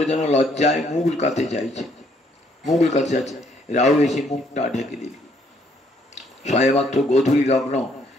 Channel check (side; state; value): both; normal; correlation 0.68